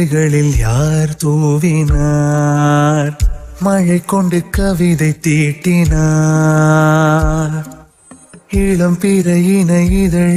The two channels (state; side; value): identical; both; correlation 1.00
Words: யார் தூவினார்? மழை கொண்டு கவிதை தீட்டினார். இளம் பிறையின